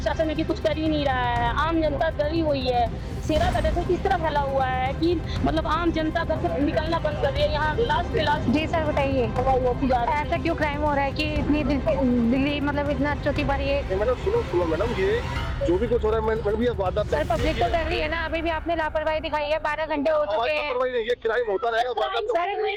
भी कुछ कर ही नहीं रहा है। आम जनता डरी हुई है। शेरा का जैसे किस तरह फैला हुआ है कि मतलब आम जनता घर से निकलना बंद कर रही है। यहाँ लाश पे लाश। जी सर बताइए, ऐसा क्यों क्राइम हो रहा है कि इतनी दिल्ली मतलब इतना चौथी बार ये? मैडम सुनो मैडम, ये जो भी कुछ हो रहा है मैडम, ये वारदात सर पब्लिक तो कर रही है ना, अभी भी आपने लापरवाही दिखाई है। 12 घंटे हो चुके हैं। ये क्राइम होता रहेगा। सर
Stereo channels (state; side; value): identical; both; correlation 1.00